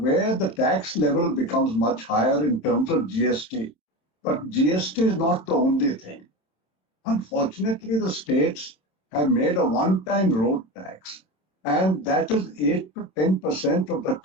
the tax level becomes much higher in terms of GST. But GST is not the only thing. Unfortunately, the states have made a one-time road tax, and that is 8 to 10% of the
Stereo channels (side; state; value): right; late; 27 ms